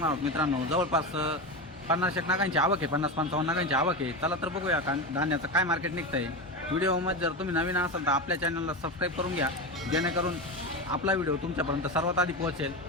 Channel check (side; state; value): both; normal; correlation 0.19